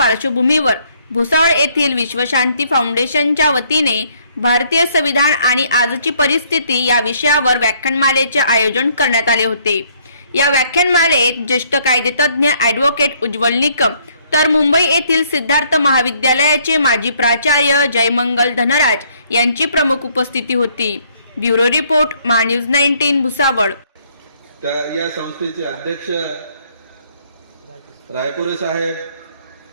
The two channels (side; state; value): both; inverted; correlation -0.66